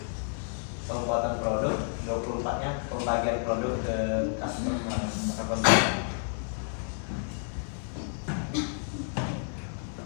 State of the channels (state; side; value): silent; right; 58 dB below the other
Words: pembuatan produk, 24-nya pembagian produk ke customer.